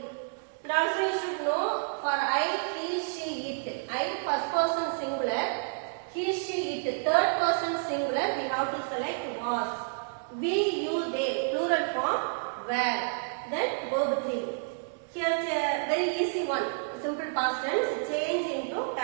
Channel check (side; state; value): left; silent; digital silence